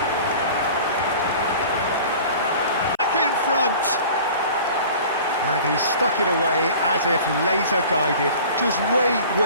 Back in front. And he stuck it away as if laser guided. Just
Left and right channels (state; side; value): inverted; both; correlation -0.43